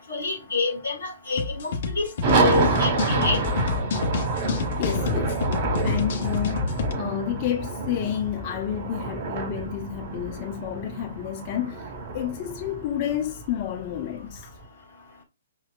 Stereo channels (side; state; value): both; inverted; correlation -0.37